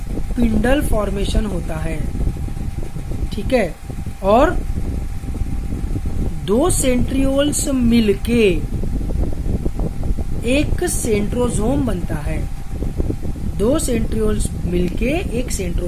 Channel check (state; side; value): identical; both; correlation 1.00